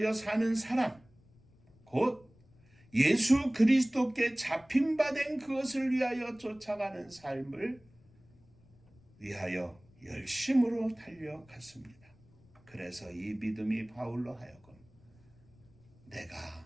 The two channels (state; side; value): noise; left; rumble, 28 dB below the sound